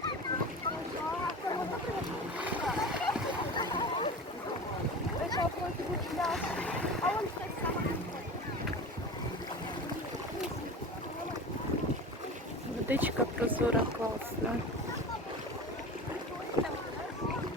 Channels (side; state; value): both; normal; correlation 0.33